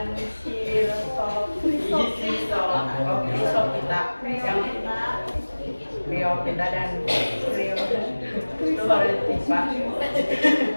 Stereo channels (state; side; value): inverted; both; correlation -1.00